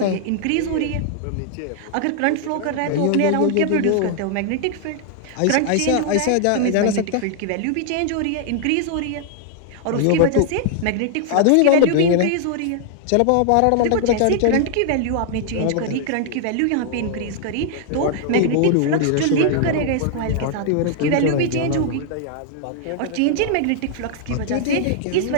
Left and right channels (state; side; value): different; both; correlation 0.00